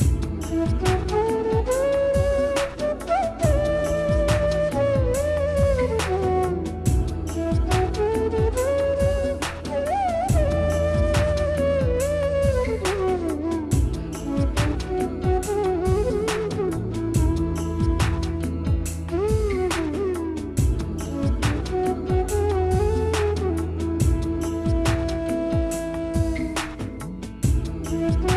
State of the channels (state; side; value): identical; both; correlation 1.00